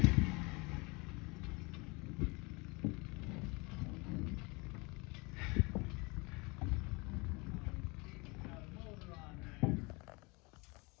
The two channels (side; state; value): right; quieter; 27.3 dB